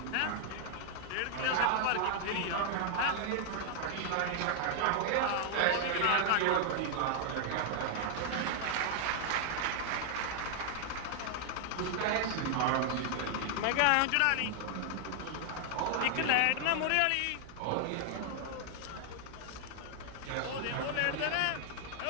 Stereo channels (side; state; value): both; different; correlation 0.00